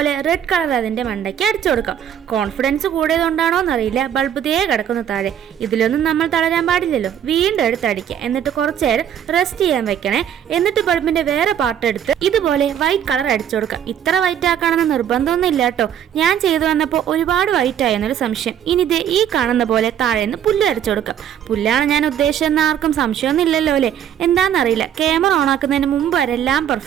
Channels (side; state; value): left; quieter; 9.6 dB